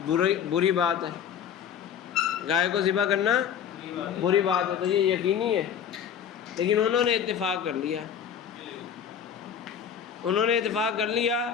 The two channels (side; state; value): right; quieter; 8.3 dB